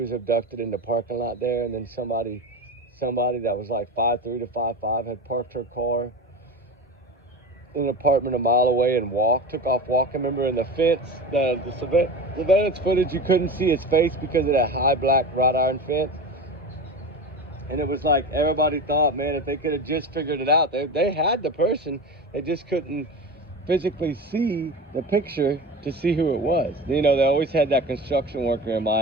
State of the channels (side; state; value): both; normal; correlation 0.28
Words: abducted in the parking lot there, and then somebody that was like 5'3" to 5'5" had parked her car in an apartment a mile away and took off walking. Remember in the fence, the surveillance footage, you couldn't see his face because of that high black wrought iron fence. And it was like everybody thought, man, if they could have just figured it out, they had the person, they just couldn't physically see the picture to see who it was. You know, they always had that construction worker in